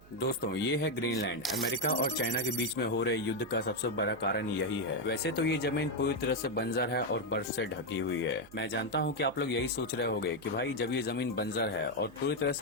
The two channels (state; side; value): noise; right; hum, 23 dB below the sound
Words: दोस्तों ये है ग्रीनलैंड। अमेरिका और चाइना के बीच में हो रहे युद्ध का सबसे बड़ा कारण यही है। वैसे तो ये जमीन पूरी तरह से बंजर है और बर्फ से ढकी हुई है। मैं जानता हूँ कि आप लोग यही सोच रहे होंगे कि भाई जब ये जमीन बंजर है और पूरी तरह